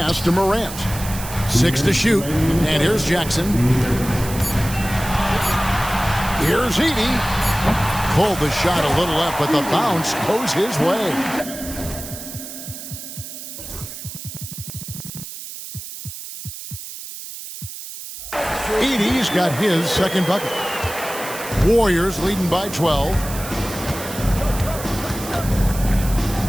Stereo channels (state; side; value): noise; right; hiss, 11 dB below the sound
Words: to Morant. 6 to shoot. And here's Jackson. Here's Edey. Pulled the shot a little up, but the bounce goes his way. Edey's got his second bucket. Warriors leading by 12.